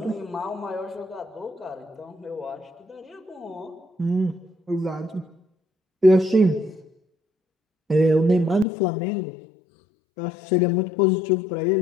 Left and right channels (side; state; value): right; drops out; at 8.7 s